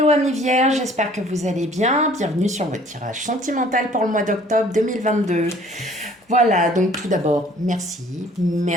amis vierges, j'espère que vous allez bien. Bienvenue sur votre tirage sentimental pour le mois d'octobre 2022. Voilà, donc tout d'abord, merci.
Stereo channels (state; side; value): normal; both; correlation 0.55